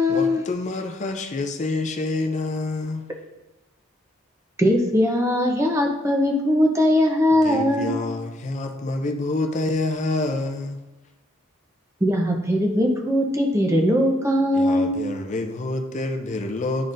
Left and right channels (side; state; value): both; normal; correlation 0.75